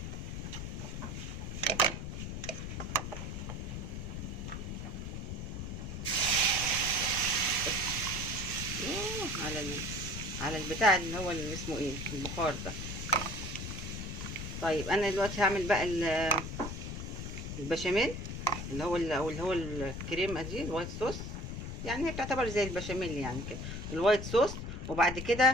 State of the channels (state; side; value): noise; left; rumble, 5 dB below the sound